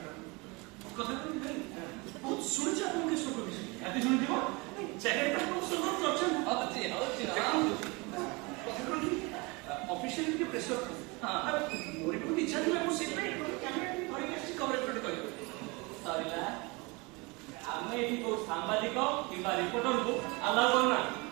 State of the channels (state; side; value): quieter; left; 26.8 dB